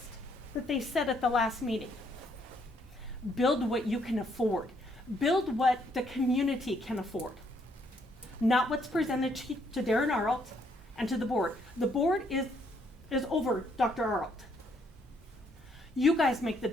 that they said at the last meeting. Build what you can afford. Build what the community can afford. Not what's presented to Darren Arlt and to the board. The board is over Dr. Arlt. You guys make the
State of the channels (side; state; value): both; normal; correlation 0.70